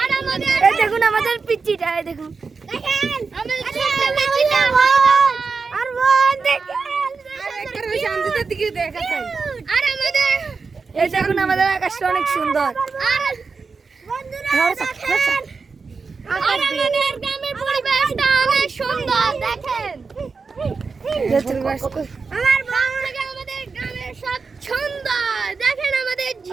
আর আমাদের এই দেখুন আমাদের পিচ্চিটা, এই দেখুন দেখেন আমাদের ছোট্ট পিচ্চিটা আর বোন দেখেন। আর আমাদের এই দেখুন আমাদের আকাশটা অনেক সুন্দর। আর বন্ধুরা দেখেন, আর আমাদের গ্রামের পরিবেশটা অনেক সুন্দর দেখেন। আমার বাবা থেকে আমাদের গ্রামের সব সুন্দর দেখেন। আমাদের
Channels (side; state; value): left; quieter; 4.7 dB